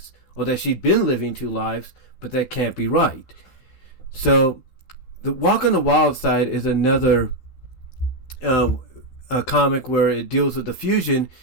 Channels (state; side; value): late; right; 12 ms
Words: or that she'd been living two lives, but that can't be right. So, the Walk on the Wild Side is another a comic where it deals with the fusion,